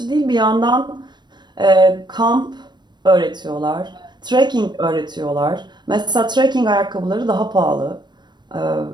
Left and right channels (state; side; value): late; left; 0.21 ms